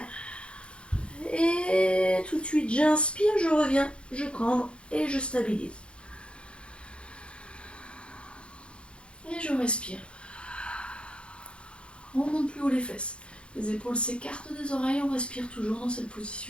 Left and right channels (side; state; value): right; late; 0.057 ms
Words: Et tout de suite, j'inspire, je reviens, je cambre et je stabilise. Et je respire. On monte plus haut les fesses. Les épaules s'écartent des oreilles, on respire toujours dans cette